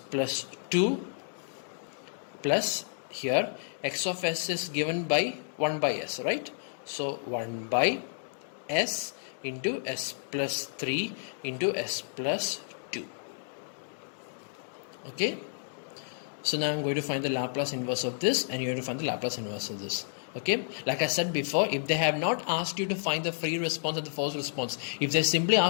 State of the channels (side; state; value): right; silent; digital silence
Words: 2 plus, here x of s is given by 1 by s, right? So 1 by s into s plus 3 into s plus 2. Okay, so now I'm going to find the Laplace inverse of this, and you have to find the Laplace inverse of this. Okay, like I said before, if they have not asked you to find the free response and the forced response, if they simply